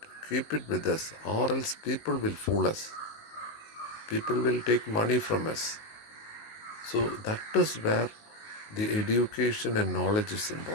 keep it with us, or else people will fool us. People will take money from us. So that is where the education and knowledge is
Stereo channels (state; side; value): late; right; 19 ms